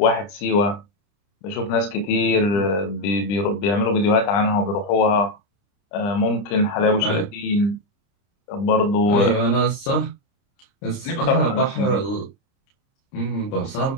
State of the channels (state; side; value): late; right; 30 ms